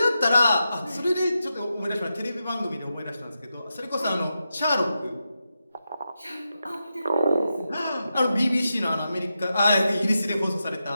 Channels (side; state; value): both; inverted; correlation -0.88